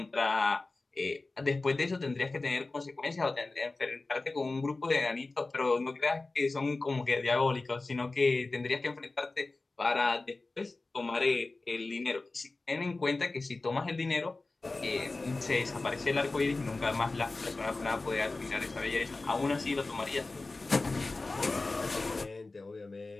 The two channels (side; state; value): right; quieter; 3.3 dB